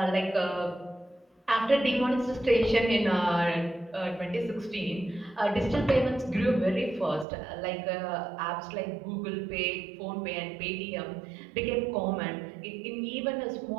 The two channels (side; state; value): left; drops out; at 7.2 s